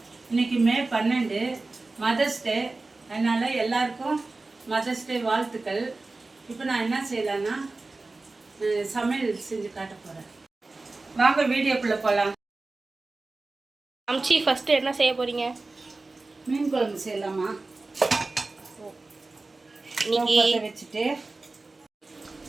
இன்றைக்கி மே 12 மதர்ஸ் டே. அதனால் எல்லாருக்கும் மதர்ஸ் டே வாழ்த்துக்கள். இப்போ நான் என்ன செய்யலான்னா சமையல் செஞ்சு காட்ட போகிறேன். வாங்க வீடியோக்குள்ளே போகலாம். அம்ச்சி ஃபஸ்ட்டு என்ன செய்ய போகிறீங்க? மீன் குழம்பு செய்யலாமா? இன்னைக்கு வச்சுட்டு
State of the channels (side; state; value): left; quieter; 3.4 dB